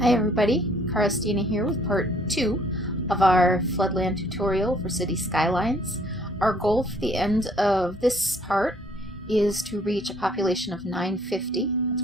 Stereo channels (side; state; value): both; normal; correlation 0.61